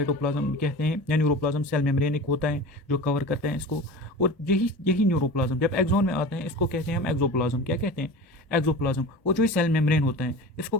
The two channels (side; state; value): both; normal; correlation 0.34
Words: कहते हैं, या न्यूरोप्लाज्म सेल मेम्ब्रेन एक होता है जो कवर करते हैं इसको। और यही न्यूरोप्लाज्म जब एक्सोन में आते हैं, इसको कहते हैं हम एक्सोप्लाज्म। क्या कहते हैं? एक्सोप्लाज्म। और जो सेल मेम्ब्रेन होता है इसको